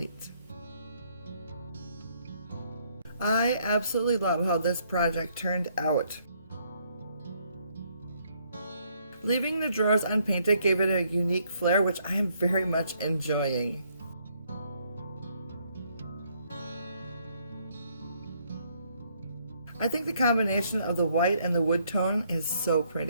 I absolutely love how this project turned out. Leaving the drawers unpainted gave it a unique flair, which I am very much enjoying. I think the combination of the white and the wood tone is so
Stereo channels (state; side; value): inverted; both; correlation -0.69